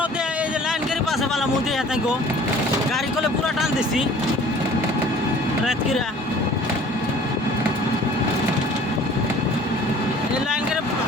দে এই যে লাইন গাড়ি পাশে পালা মুদি হাতে গো গাড়ি কলে পুরা টান দিছি রাত কিরা এই লাইন গাড়ি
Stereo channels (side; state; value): both; normal; correlation 0.50